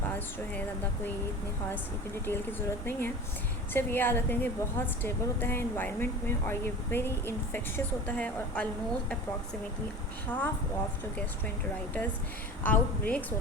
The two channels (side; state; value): both; normal; correlation 0.35